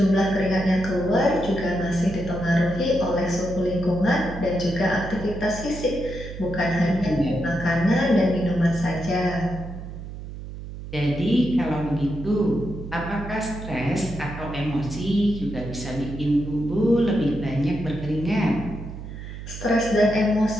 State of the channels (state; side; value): noise; right; hum, 10 dB below the sound